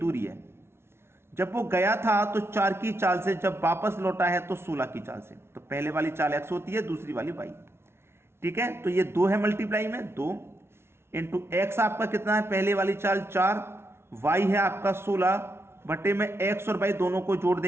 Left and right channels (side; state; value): left; late; 0.12 ms